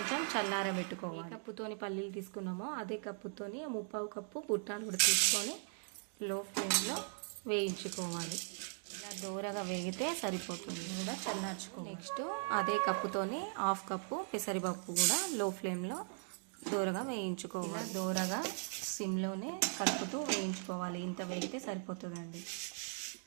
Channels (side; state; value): left; silent; 52 dB below the other